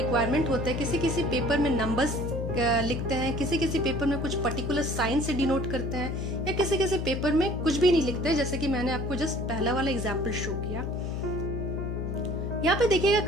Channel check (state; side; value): noise; left; hum, 3 dB below the sound